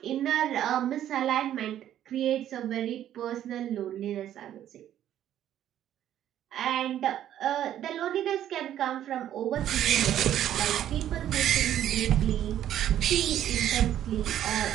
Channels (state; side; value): quieter; left; 11.3 dB